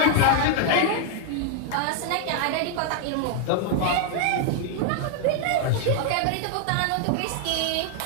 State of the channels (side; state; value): both; different; correlation 0.00